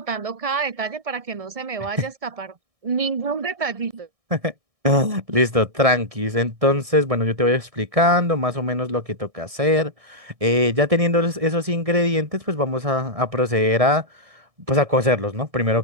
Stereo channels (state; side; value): late; left; 1.6 ms